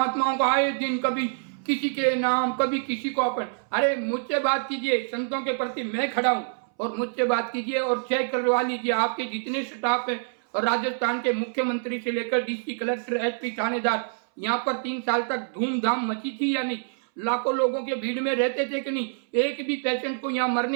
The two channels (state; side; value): silent; left; 61 dB below the other